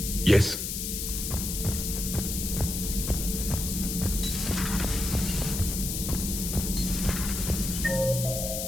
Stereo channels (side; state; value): left; noise; hiss, 3 dB below the sound